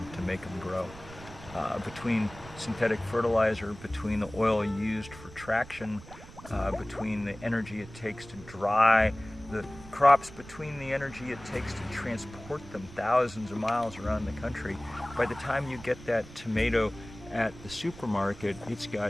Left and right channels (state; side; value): noise; right; rumble, 17 dB below the sound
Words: to make them grow. Between synthetic fertilizer, between the oil used for traction, between the energy it takes to dry the crops, between the energy it takes to transport them thousands of miles around the country, by the time you get that tomato at the supermarket, it's